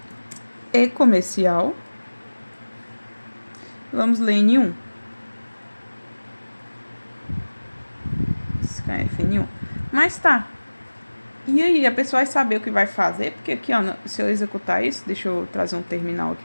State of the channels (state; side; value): inverted; both; correlation -1.00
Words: E comercial. Vamos ler N1. Scanf N1. Mas tá. E aí, a pessoa vai saber o que vai fazer, porque aqui, ó, se eu executar isso, deixa eu trazer um terminal